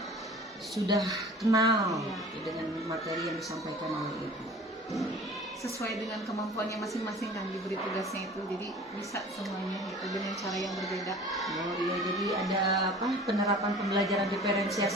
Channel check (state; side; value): normal; both; correlation 0.44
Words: sudah kenal Iya. dengan materi yang disampaikan oleh Ibu. Sesuai dengan kemampuannya masing-masing kan diberi tugasnya itu, jadi bisa semuanya gitu dengan cara yang berbeda. Oh iya, jadi ada penerapan pembelajaran